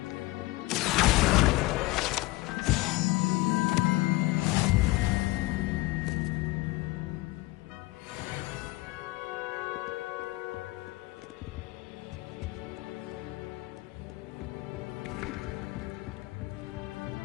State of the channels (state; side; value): quieter; right; 20.3 dB